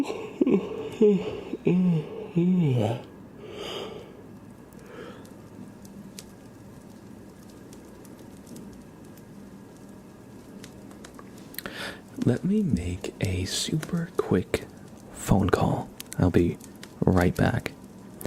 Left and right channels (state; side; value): identical; both; correlation 1.00